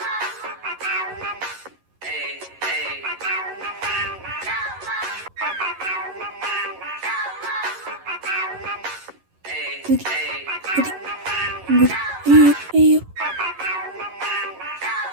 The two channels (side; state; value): left; late; 11 ms